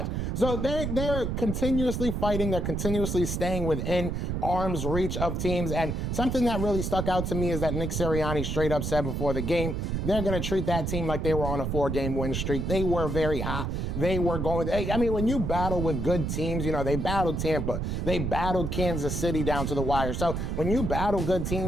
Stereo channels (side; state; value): right; noise; rumble, 2 dB below the sound